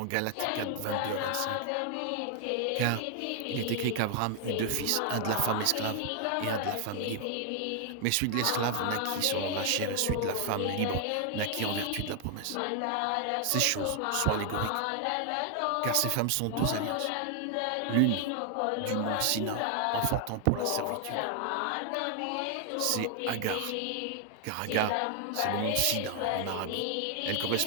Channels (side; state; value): both; different; correlation 0.00